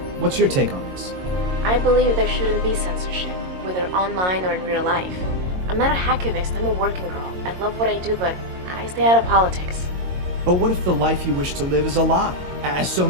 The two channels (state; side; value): late; left; 22 ms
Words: what's your take on this? I believe there shouldn't be censorship, whether online or in real life. I'm not a hacktivist, I'm a working girl. I love what I do, but I stay out of politics. But what if the life you wish to live is a lie, as so